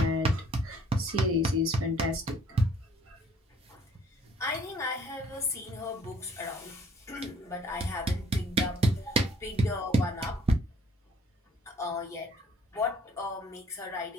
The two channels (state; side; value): normal; both; correlation 0.58